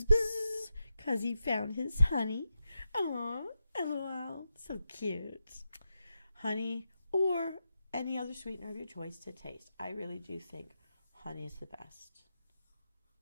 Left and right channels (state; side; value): inverted; both; correlation -0.88